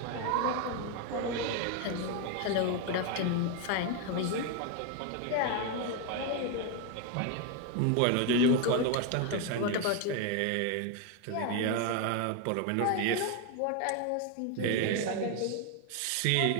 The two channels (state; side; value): different; both; correlation 0.01